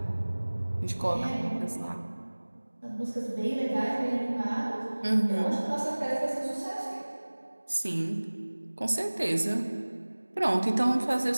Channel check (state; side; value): inverted; both; correlation -1.00